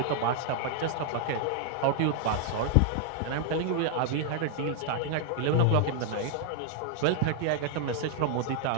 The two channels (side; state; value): both; different; correlation 0.00